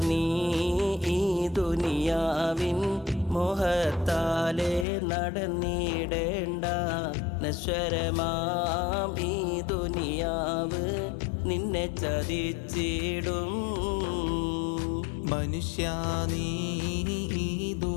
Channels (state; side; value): drops out; right; at 4.9 s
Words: നീ ഈ ദുനിയാവിൻ മോഹത്താലെ നടന്നിടേണ്ട. നശ്വരമാം ഈ ദുനിയാവ് നിന്നെ ചതിച്ചിടും. മനുഷ്യ നീ ഈ